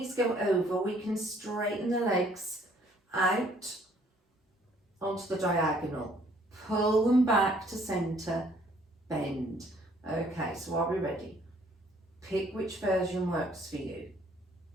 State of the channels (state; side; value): normal; both; correlation 0.61